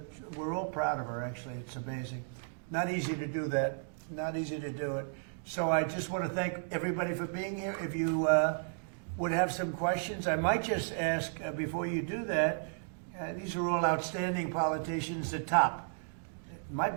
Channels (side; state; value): left; silent; digital silence